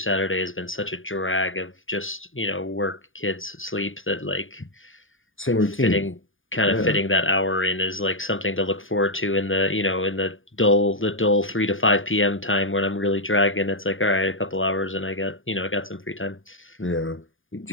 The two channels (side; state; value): right; late; 0.58 ms